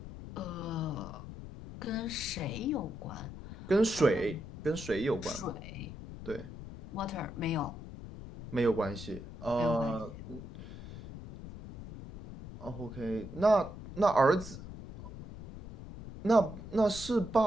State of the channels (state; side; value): noise; left; rumble, 12 dB below the sound